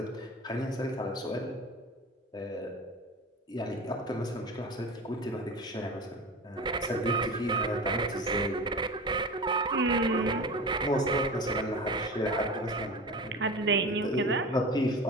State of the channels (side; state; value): both; normal; correlation 0.31